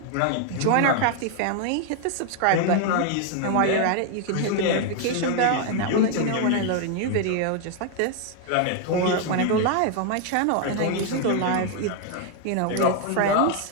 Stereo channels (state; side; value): different; both; correlation 0.00